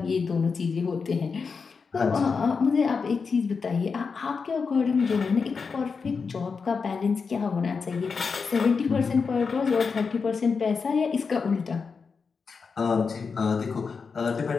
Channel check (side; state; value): right; quieter; 5.2 dB